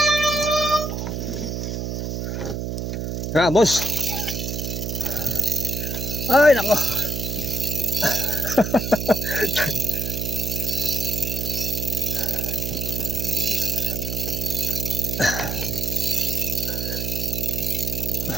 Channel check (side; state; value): right; noise; hum, 3 dB below the sound